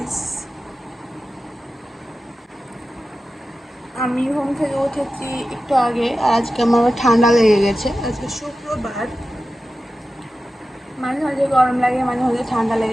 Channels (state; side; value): normal; both; correlation 0.93